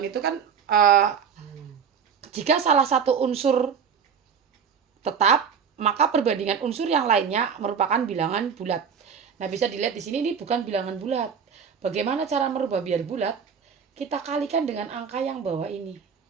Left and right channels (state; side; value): quieter; left; 6.9 dB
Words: itu kan jika salah satu unsur tetap, maka perbandingan unsur yang lainnya merupakan bilangan bulat. Nah, bisa dilihat di sini ini bukan bilangan bulat. Bagaimana cara merubah biar bulat? Kita kalikan dengan angka yang bawah ini.